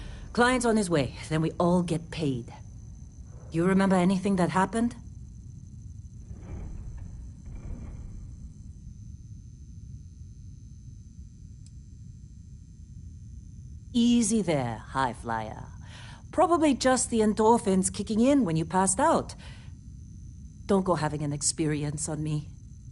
Client's on his way, then we all get paid. You remember anything that happened? Easy there, high flyer. Probably just the endorphins kicking in when you passed out. Don't go having an experience on me.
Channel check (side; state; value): both; identical; correlation 1.00